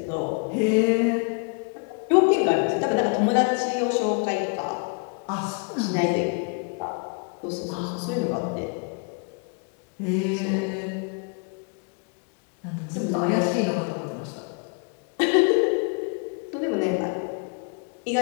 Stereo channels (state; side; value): quieter; right; 36.4 dB